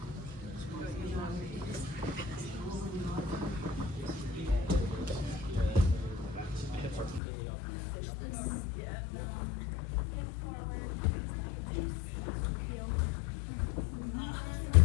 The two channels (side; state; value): right; drops out; at 7.2 s